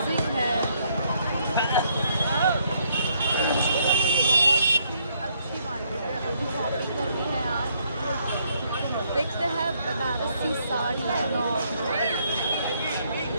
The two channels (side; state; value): both; inverted; correlation -0.70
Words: है, बहुत अच्छी मार्केट है। अभी शॉपिंग करनी है आज। देखते हैं बनारसी साड़ी